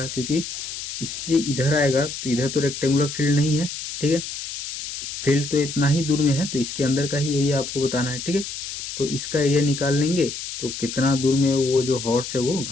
क्योंकि इससे इधर आएगा तो इधर तो रेक्टेंगुलर फील्ड नहीं है। ठीक है, फील्ड तो इतना ही दूर में है, तो इसके अंदर का ही एरिया आपको बताना है। ठीक है, तो इसका एरिया निकाल लेंगे तो कितना दूर में वो जो हॉर्स है वो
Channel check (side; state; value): left; noise; hiss, 7 dB below the sound